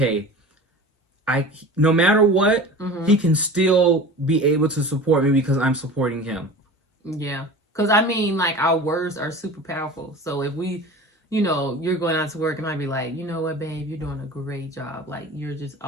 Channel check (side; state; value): both; normal; correlation 0.36